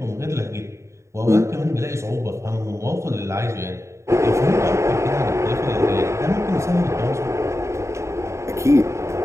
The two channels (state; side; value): late; left; 0.14 ms